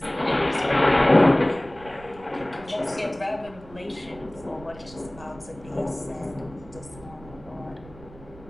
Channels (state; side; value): noise; right; rumble, 20 dB below the sound